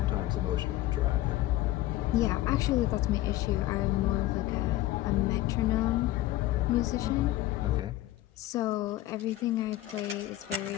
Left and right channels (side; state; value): right; quieter; 15.6 dB